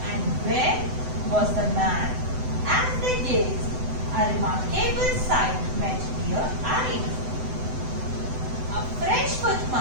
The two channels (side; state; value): left; late; 7.9 ms